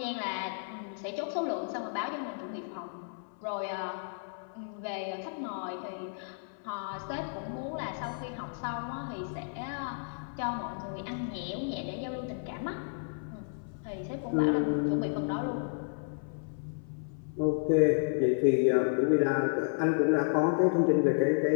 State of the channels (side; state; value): right; silent; 56 dB below the other